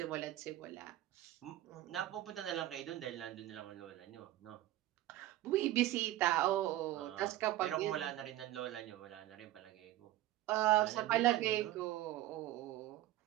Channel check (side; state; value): left; quieter; 15.1 dB